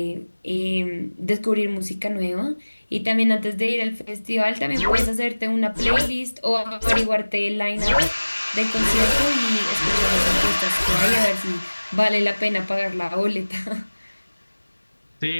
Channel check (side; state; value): both; inverted; correlation -1.00